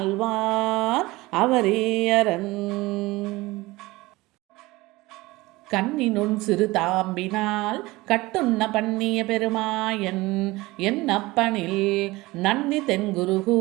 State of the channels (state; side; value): quieter; left; 20.6 dB